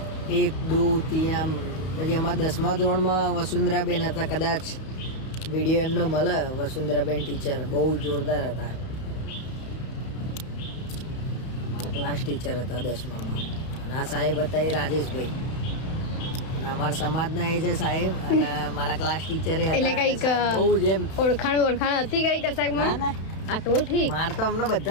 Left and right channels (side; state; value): right; late; 32 ms